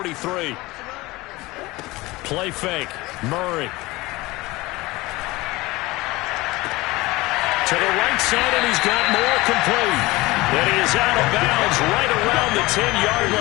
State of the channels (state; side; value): quieter; right; 20.8 dB